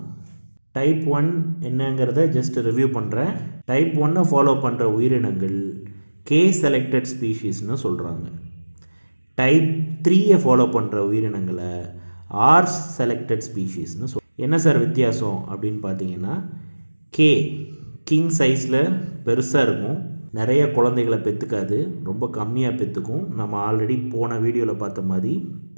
டைப் 1 என்னங்கிறத ஜஸ்ட் ரிவ்யூ பண்ணுறேன். டைப் 1 ஃபாலோ பண்ணுற உயிரினங்கள் கே செலக்டட் ஸ்பீஷீஸ்னு சொல்கிறாங்க. டைப் 3 ஃபாலோ பண்ணுற உயிரினங்களை ஆர் செலக்டட் ஸ்பீஷீஸ்னு என்ன சார் வித்தியாசம் அப்படின்னு பார்த்தீங்கன்னா, கே கிங் சைஸில் பெருசாக இருக்கும், நிறைய குழந்தைகளை பெற்றுக்காது, ரொம்ப கம்மியாக பெற்றுக்கும். நம்ம ஆல்ரெடி போன வீடியோவில் பார்த்த மாதிரி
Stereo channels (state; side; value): inverted; both; correlation -1.00